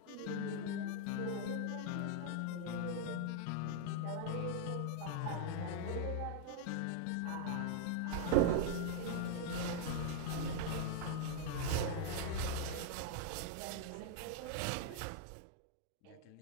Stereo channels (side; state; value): both; different; correlation -0.01